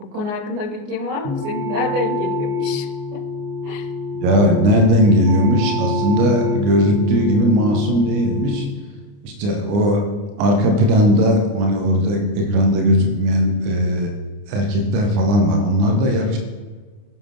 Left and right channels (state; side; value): late; left; 29 ms